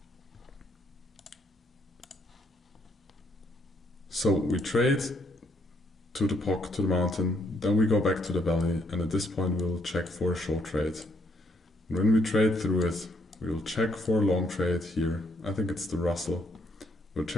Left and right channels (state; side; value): normal; both; correlation 0.71